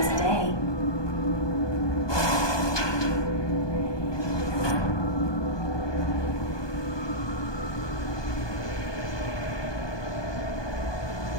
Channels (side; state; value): right; late; 1.2 ms